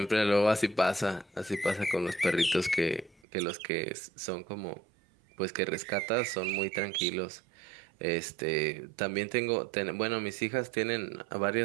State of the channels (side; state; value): left; drops out; at 3.2 s